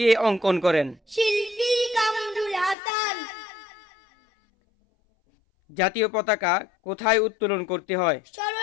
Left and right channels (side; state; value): right; drops out; at 2.8 s